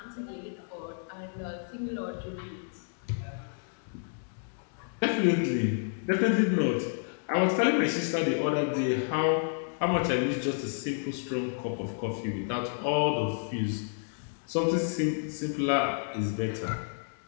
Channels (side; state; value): right; silent; digital silence